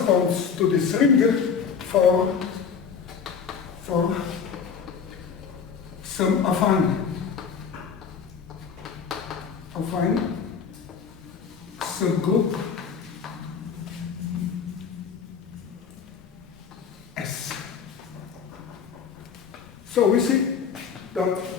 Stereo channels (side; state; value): right; quieter; 6.5 dB